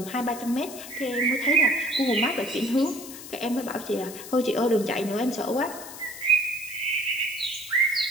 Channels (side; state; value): left; noise; hiss, 13 dB below the sound